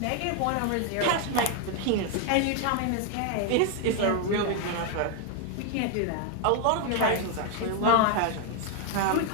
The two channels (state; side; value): different; both; correlation 0.01